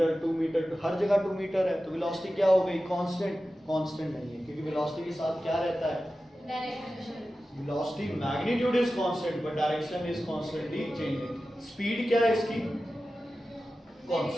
2 मीटर, हर जगह 2 मीटर है तो वेलोसिटी क्या हो गई? कांस्टेंट। कांस्टेंट नहीं है, क्योंकि वेलोसिटी के साथ क्या रहता है? Direction. Velocity magnitude is constant but direction is constantly changing. Speed क्या है इसकी?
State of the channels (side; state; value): both; normal; correlation 0.94